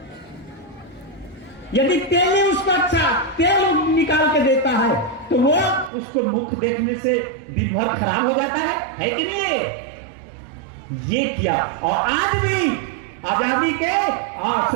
यदि तेली उसको अच्छा तेल निकाल के देता है तो वो उसको मुख देखने से दिन भर खराब हो जाता है कि नहीं? ये किया। और आज भी आजादी के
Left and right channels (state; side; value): drops out; left; at 5.9 s